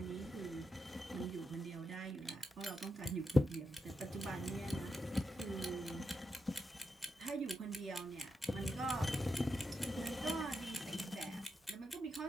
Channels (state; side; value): normal; both; correlation 0.87